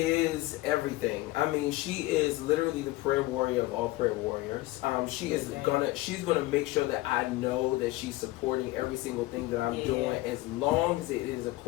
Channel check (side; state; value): right; quieter; 18.8 dB